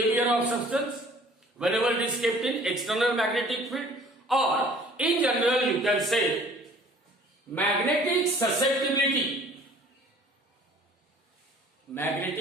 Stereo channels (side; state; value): both; normal; correlation 0.52